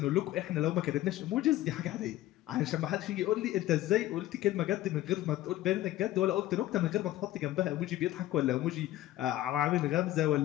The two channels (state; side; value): quieter; right; 14.8 dB